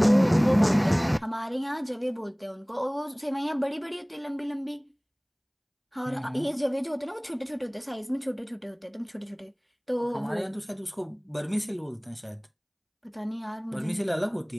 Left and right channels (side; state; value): both; identical; correlation 1.00